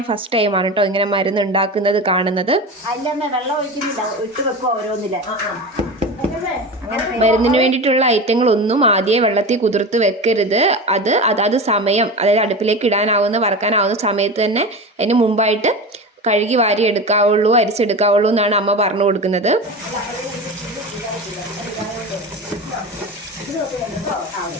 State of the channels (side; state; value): both; normal; correlation 0.27